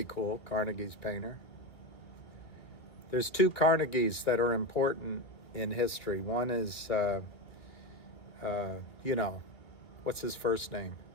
cool, Carnegie's Painter. There's 2 Carnegies that are important in history. One is, you know, what's his first name?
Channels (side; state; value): right; late; 2.3 ms